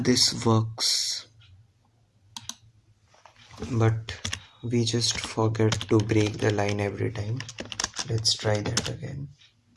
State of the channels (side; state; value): both; identical; correlation 1.00